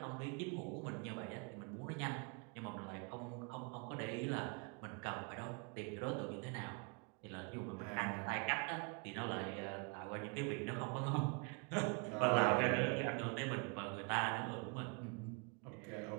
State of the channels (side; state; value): left; quieter; 33.7 dB